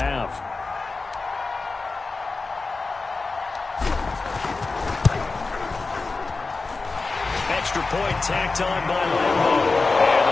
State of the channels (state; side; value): quieter; right; 3.9 dB